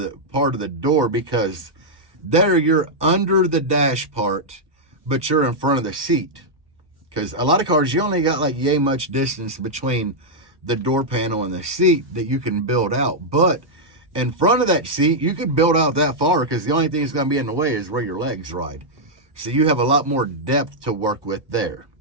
part of the door, because there you're under the dash part, but you're in front of the seat. Because a lot of cars, you only got like yay much distance between the door panel and the seat that you can build out. But in front of that seat, you could build out that far because the only thing that's going to be in the way is where your legs ride. So you have a lot more depth to work with there.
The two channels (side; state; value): left; late; 1.2 ms